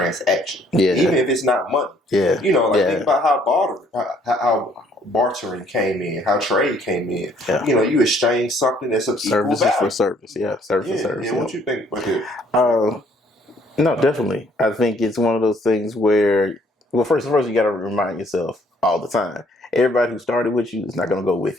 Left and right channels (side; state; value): both; normal; correlation 0.63